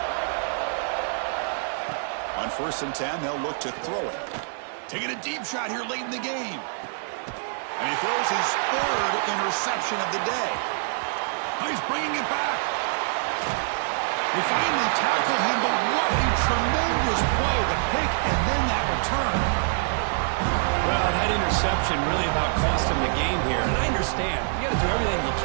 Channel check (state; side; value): silent; left; digital silence